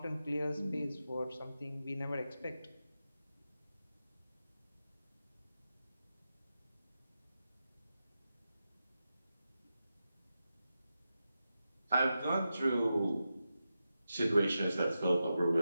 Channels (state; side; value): inverted; both; correlation -0.90